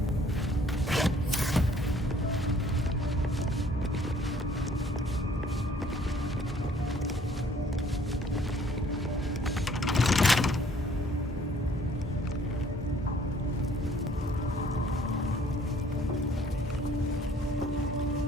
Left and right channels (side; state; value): both; normal; correlation 0.59